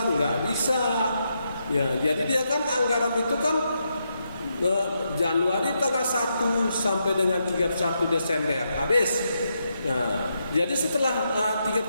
nggak bisa. Ya, jadi dia kan anggaran itu kan Januari tanggal 1 sampai dengan 31 Desember habis. Nah, jadi setelah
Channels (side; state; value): both; inverted; correlation -0.82